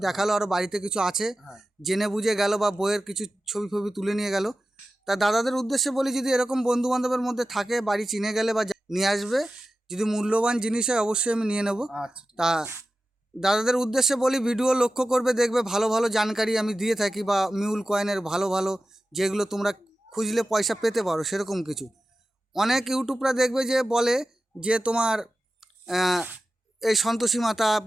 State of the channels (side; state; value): both; normal; correlation 0.94